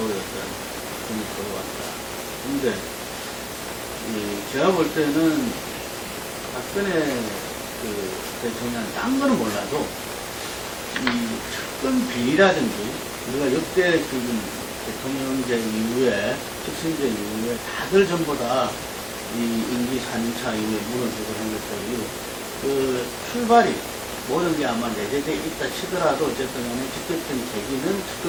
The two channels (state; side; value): identical; both; correlation 1.00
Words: 어떤 그런 걸 보여왔다. 그런데 제가 볼 때는 박근혜 대통령 딴 거는 몰라도 이 측근 비리라든지 우리가 역대 지금 대통령제 이후에 직선제 이후에 다들 전부 다 이 임기 4년차 이후에 무너지고 한 것들이 출발이 모든 게 아마 내재되어 있다 치더라도 어쨌든 간에 직접적인 계기는